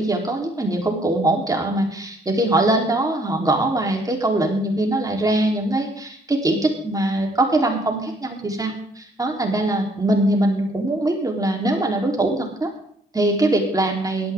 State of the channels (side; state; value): both; normal; correlation 0.64